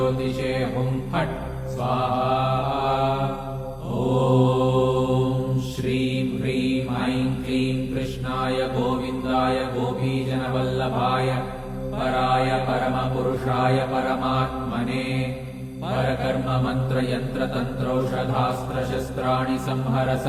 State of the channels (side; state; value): both; identical; correlation 1.00